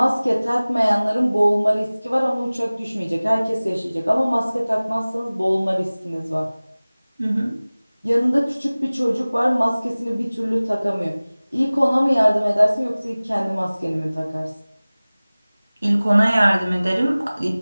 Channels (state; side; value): inverted; both; correlation -0.99